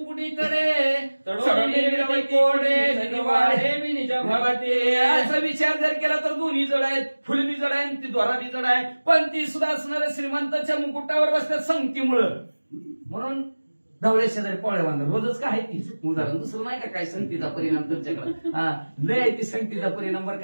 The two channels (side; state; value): both; inverted; correlation -1.00